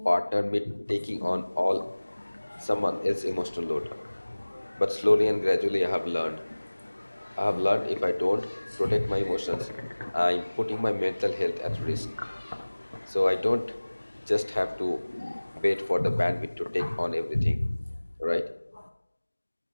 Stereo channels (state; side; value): inverted; both; correlation -1.00